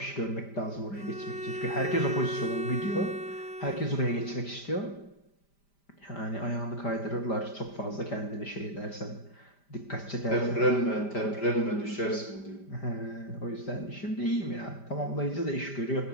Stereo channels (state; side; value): late; right; 5.0 ms